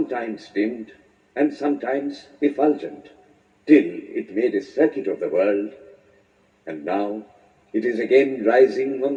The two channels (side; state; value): both; identical; correlation 1.00